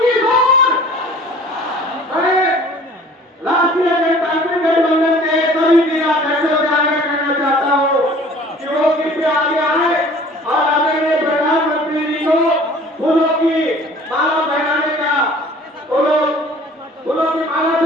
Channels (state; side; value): normal; both; correlation 0.49